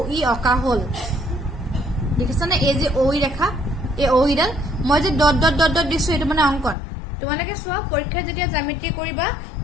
অকা হল দেখিছানে এই যে OE ৰেখা এই OE ডাল মই যে ডট ডট ডট ডট দিছো এটো মানে অঙ্কন তোমালোকে চোৱা পৰীক্ষা যেতিয়া জ্যামিতি কৰিবা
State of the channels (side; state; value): right; drops out; at 6.8 s